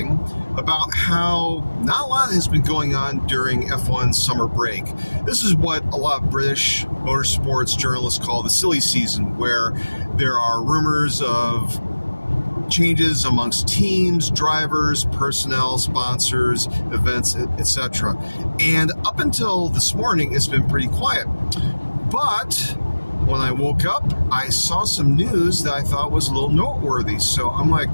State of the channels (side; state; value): both; inverted; correlation -1.00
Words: about how not a lot has been going on during F1 summer break. This is what a lot of British motorsports journalists call the silly season, where there are rumors of changes amongst teams, drivers, personnel, sponsors, events, etc. And up until this morning, it's been pretty quiet. But when I woke up, I saw some news that I thought was a little noteworthy, so I'm going